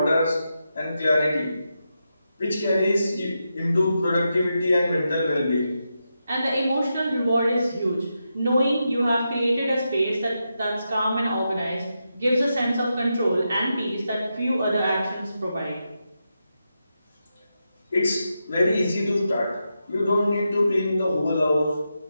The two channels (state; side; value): inverted; both; correlation -0.87